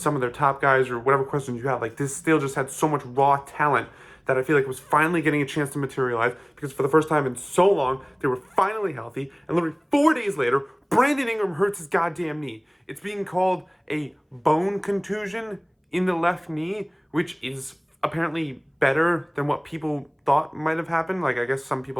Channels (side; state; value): both; identical; correlation 1.00